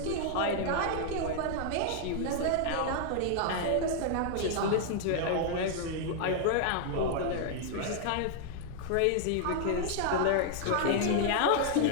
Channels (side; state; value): both; different; correlation 0.00